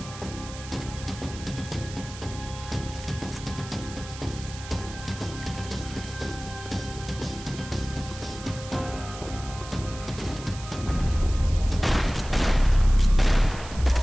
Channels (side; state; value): right; noise; hiss, 14 dB below the sound